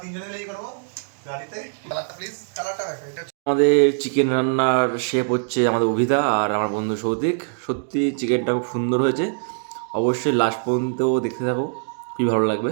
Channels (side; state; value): left; silent; digital silence